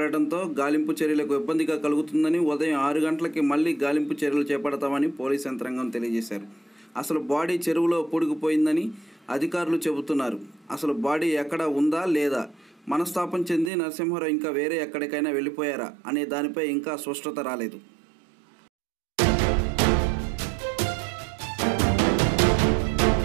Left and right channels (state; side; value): drops out; left; at 13.7 s